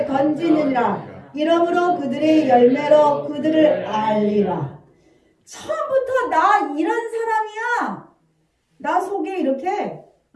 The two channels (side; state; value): both; identical; correlation 1.00